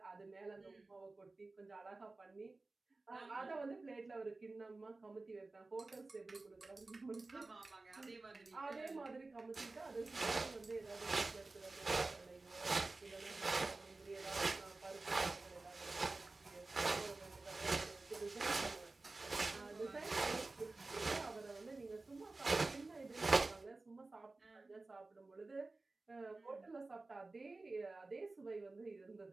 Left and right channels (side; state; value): left; quieter; 3.4 dB